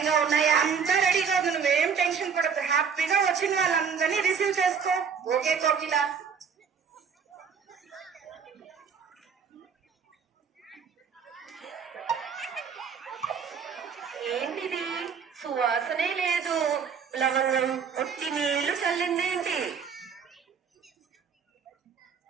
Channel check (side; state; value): left; quieter; 6.5 dB